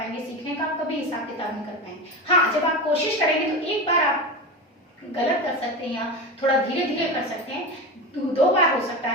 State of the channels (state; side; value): normal; both; correlation 0.23